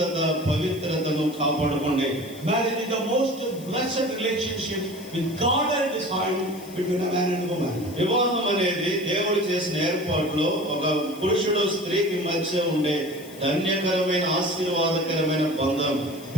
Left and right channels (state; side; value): noise; left; hiss, 20 dB below the sound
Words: పవిత్రతను కాపాడుకోండి. Marriage is the most blessed relationship with God and His family between a man and a woman. వివాహం అనేది దేవుడు చేసిన ఏర్పాటులో ఒక పురుషుడు స్త్రీకి మధ్య ఉండే ధన్యకరమైన, ఆశీర్వాదకరమైన బంధం.